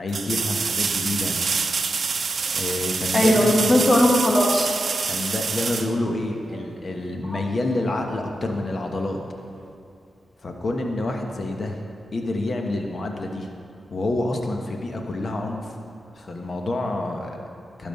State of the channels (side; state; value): both; normal; correlation 0.88